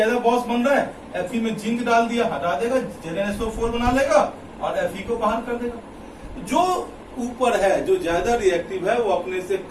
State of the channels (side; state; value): both; identical; correlation 1.00